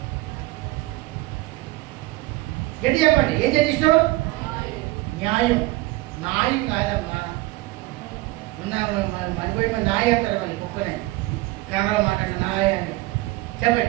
గట్టి చెప్పండి. ఏం చేయడం ఇష్టం? న్యాయం. న్యాయం కాదమ్మా. మరిపోయి న్యాయం అంటారు. మళ్ళీ కుక్కనే కన్నడ మాట న్యాయాన్ని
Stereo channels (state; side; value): quieter; left; 19.9 dB